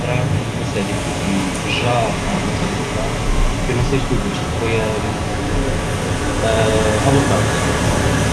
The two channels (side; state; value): both; identical; correlation 1.00